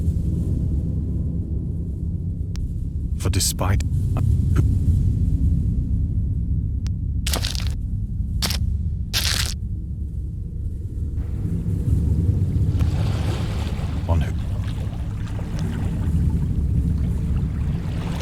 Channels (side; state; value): both; identical; correlation 1.00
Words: for despite on who